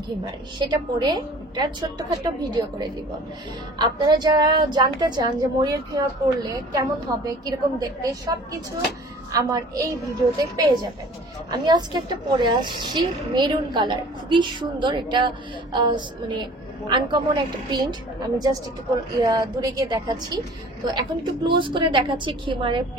খিমার সেটা পরে একটা ছোট্টখাট্ট ভিডিও করে দিব। আপনারা যারা জানতে চান যে মরিয়ম খিমার পরলে কেমন হবে, কিরকম দেখতে, সবকিছু আমার এই ভিডিওতে পেয়ে যাবেন। আমি আজকে একটা পরে আসছি মেরুন কালার, খুবই সুন্দর। এটা মানে আনকমন একটা প্রিন্ট। আমি জাস্ট একটু দূরে গিয়ে দেখাচ্ছি। তো এখন একটু ক্লোজ করে দেখাচ্ছি খিমারের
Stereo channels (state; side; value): normal; both; correlation 0.46